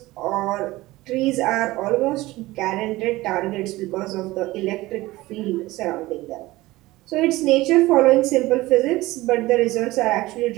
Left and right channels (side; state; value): left; quieter; 18.8 dB